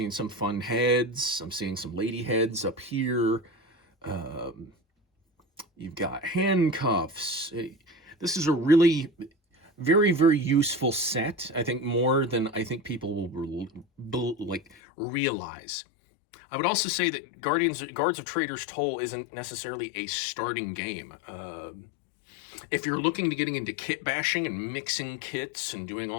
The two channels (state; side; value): drops out; right; at 14.8 s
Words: some fun heads. I'm seeing some lady heads up here. You've got handcuffs. This is a really very, very useful set. I think more than I think people will like realize. I would also say that Guards of Traitor's Toll isn't necessarily a starting game. If you're looking to getting into kit bashing and mixing kits and doing